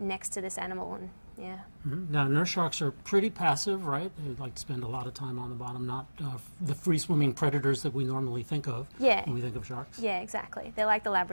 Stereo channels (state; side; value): inverted; both; correlation -1.00